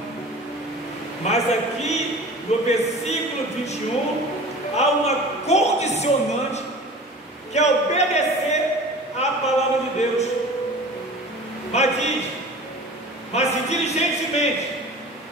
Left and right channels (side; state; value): both; normal; correlation 0.40